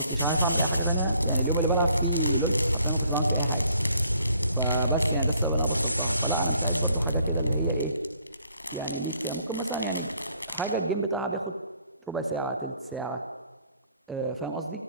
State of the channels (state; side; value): inverted; both; correlation -0.64